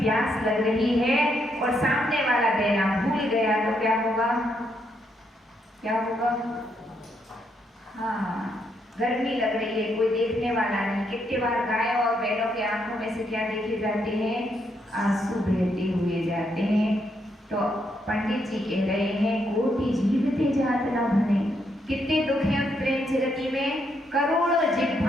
प्यास लग रही है और सामने वाला देना भूल गया तो क्या होगा? क्या होगा? हाँ, गर्मी लग रही है, कोई देखने वाला नहीं। कितने बार गाय और बैलों के आंखों में से क्या देखे जाते हैं? आंसू बहते हुए जाते हैं। तो पंडित जी कह रहे हैं कोटि जीवते जात न भने। कितने दुख हैं उस प्रेम जगती में। करोड़ों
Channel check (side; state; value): both; normal; correlation 0.77